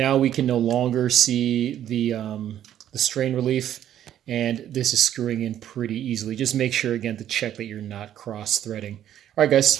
we can no longer see the strain relief, and this is screwing in pretty easily. Just make sure, again, to check that you're not cross-threading. All right,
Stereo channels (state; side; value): quieter; left; 11.0 dB